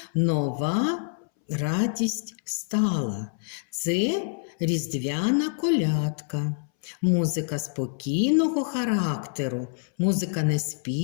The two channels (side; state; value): right; silent; 60 dB below the other